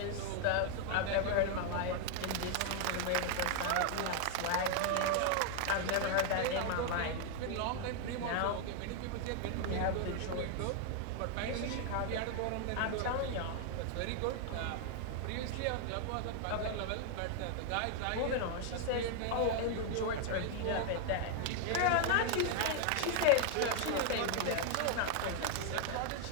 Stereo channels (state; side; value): different; both; correlation 0.00